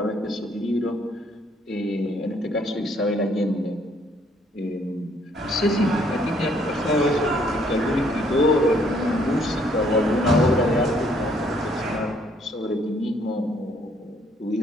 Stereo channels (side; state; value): both; normal; correlation 0.65